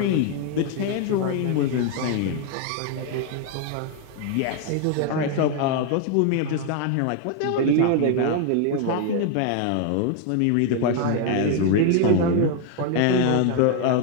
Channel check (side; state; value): both; different; correlation 0.00